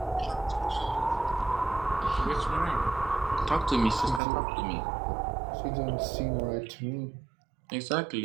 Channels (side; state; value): left; drops out; at 4.2 s